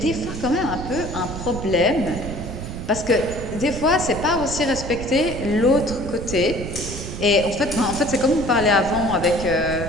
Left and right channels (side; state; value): right; noise; rumble, 8 dB below the sound